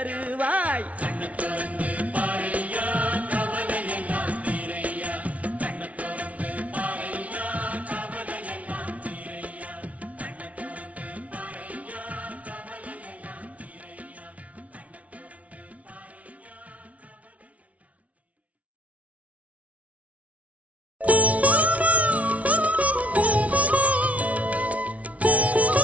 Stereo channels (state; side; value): late; left; 0.066 ms